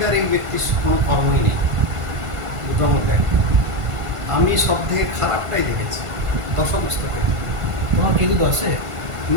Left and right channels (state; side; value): late; left; 1.5 ms